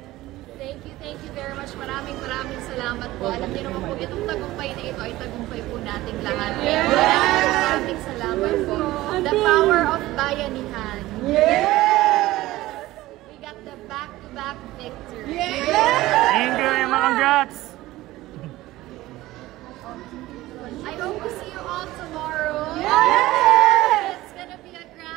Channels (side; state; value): left; quieter; 17.2 dB